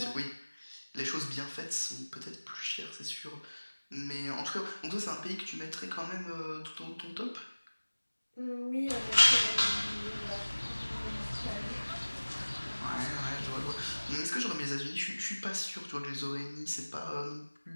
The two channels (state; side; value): inverted; both; correlation -1.00